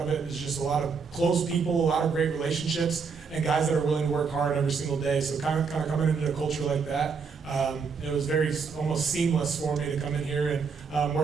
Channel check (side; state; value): left; quieter; 5.5 dB